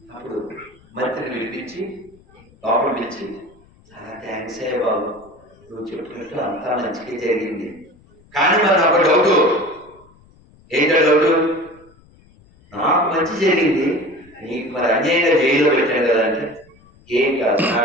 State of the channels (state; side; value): noise; left; rumble, 28 dB below the sound